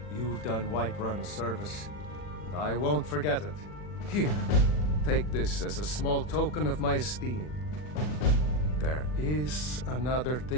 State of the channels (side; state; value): right; late; 40 ms